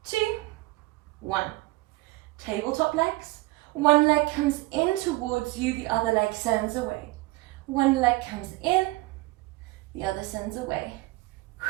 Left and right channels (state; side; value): quieter; left; 20.9 dB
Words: 2, 1. Tabletop legs. One leg comes in towards you, the other leg sends away. One leg comes in, the other sends away.